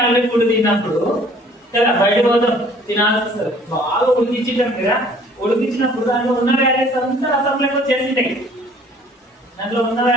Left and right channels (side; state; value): both; normal; correlation 0.55